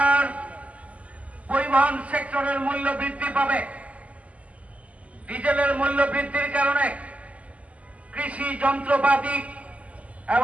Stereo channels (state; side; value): late; left; 0.069 ms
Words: পরিবহন সেক্টরের মূল্য বৃদ্ধি পাবে। ডিজেলের মূল্য বৃদ্ধির কারণে কৃষি যন্ত্রপাতি